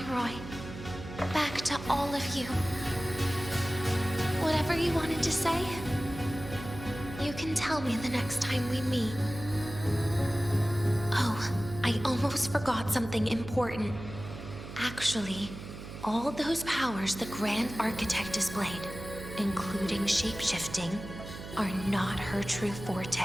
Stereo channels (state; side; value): noise; right; hum, 11 dB below the sound